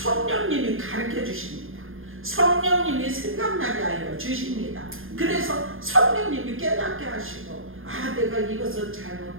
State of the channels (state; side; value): late; left; 0.60 ms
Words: 가르쳐 주십니다. 성령님이 생각나게 하여 주십니다. 그래서 성령님이 깨닫게 하시고 내가 이것은